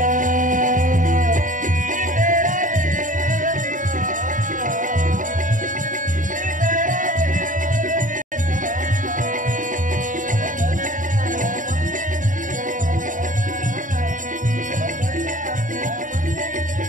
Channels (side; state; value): left; late; 0.38 ms